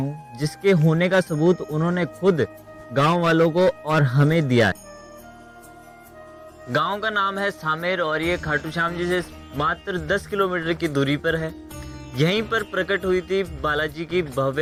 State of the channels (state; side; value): identical; both; correlation 1.00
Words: जिसके होने का सबूत उन्होंने खुद गांव वालों को और हमें दिया है। गांव का नाम है सामेर और ये खाटू श्याम जी से मात्र 10 किलोमीटर की दूरी पर है। यहीं पर प्रकट हुई थी बालाजी की